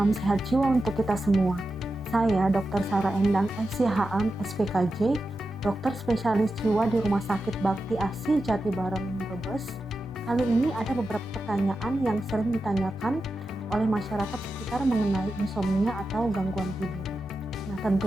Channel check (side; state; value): both; normal; correlation 0.90